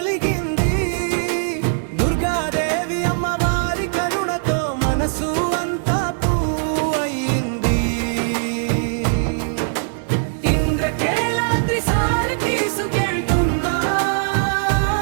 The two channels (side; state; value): left; silent; 65 dB below the other